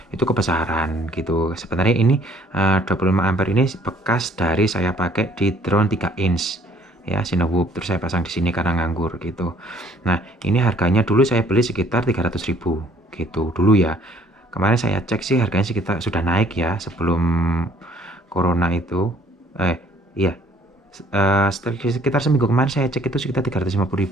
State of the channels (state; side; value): normal; both; correlation 0.59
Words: itu kebesaran gitu. Sebenarnya ini 25 ampere ini bekas dari saya pakai di drone 3 inch ya, Cinewhoop, terus saya pasang di sini karena nganggur gitu. Nah, ini harganya dulu saya beli sekitar 300.000 gitu dulu ya. Kemarin saya cek sih harganya sekitar sudah naik ya sebelum corona itu. Iya. Sekitar seminggu kemarin saya cek itu sekitar